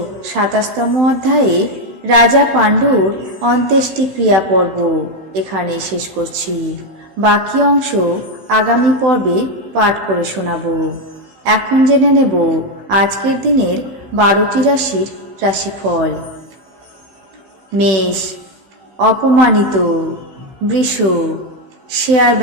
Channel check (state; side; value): late; left; 15 ms